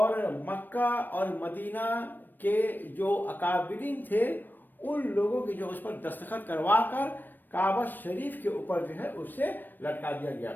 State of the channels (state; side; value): late; right; 0.092 ms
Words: مکہ اور مدینہ کے جو اکابرین تھے، ان لوگوں کی جو اس پر دستخط کروا کر کعبہ شریف کے اوپر جو ہے اسے لٹکا دیا گیا۔